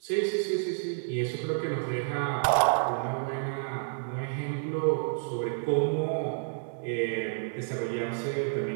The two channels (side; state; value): left; silent; 58 dB below the other